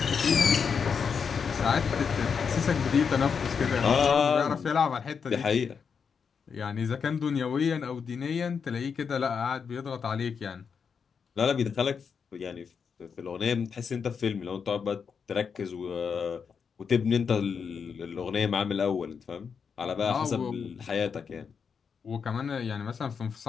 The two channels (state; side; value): quieter; right; 6.2 dB